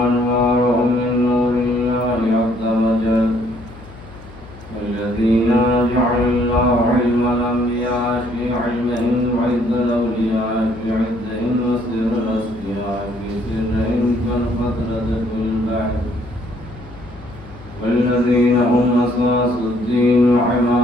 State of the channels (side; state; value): left; noise; hum, 18 dB below the sound